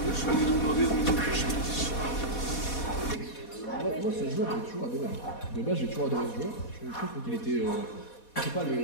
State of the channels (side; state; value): right; late; 4.2 ms